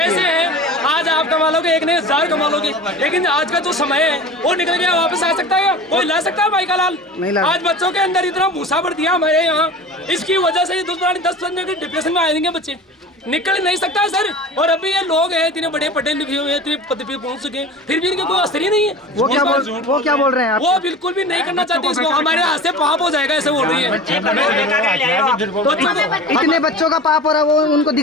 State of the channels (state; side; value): normal; both; correlation 0.36